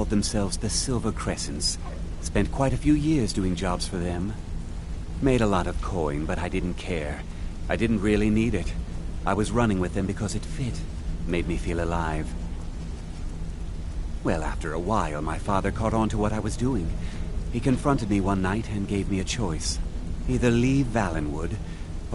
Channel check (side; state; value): both; identical; correlation 1.00